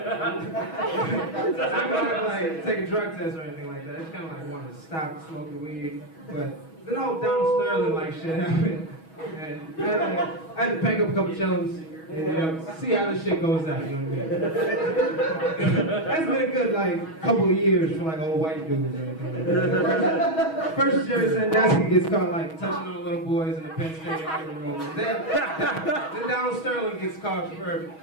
not like take a drug test or anything like that. I just kind of like wanted to stop smoking weed, but the whole Donald Sterling like shit happened, and I had to pack up a couple chillums and see how this shit goes down. You know what I mean? That's been a good like couple of years for like old white dudes or anything like that. First Jerry Sandusky gets caught like touching on little boys in the Penn State locker room. Then Donald Sterling gets caught for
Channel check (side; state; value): right; late; 6.2 ms